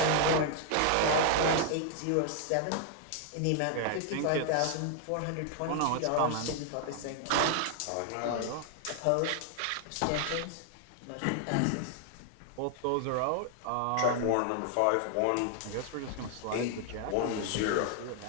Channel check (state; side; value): different; both; correlation 0.00